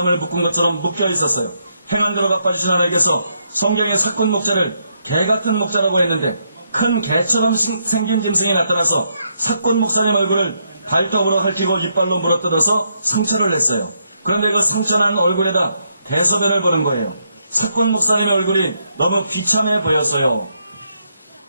묶은 것처럼 묶여 있었어요. 행한 대로 갚아주신 하나님께서 성경의 사꾼 목자를 개 같은 목자라고 했는데 큰 개처럼 생긴 짐승이 나타나서 사꾼 목사님 얼굴을 발톱으로 핥히고 이빨로 물어뜯어서 상처를 냈어요. 그런데 그 상처난 얼굴에다 대소변을 보는 거예요. 사꾼 목사님의 얼굴이 너무 비참해 보였어요.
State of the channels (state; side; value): inverted; both; correlation -0.77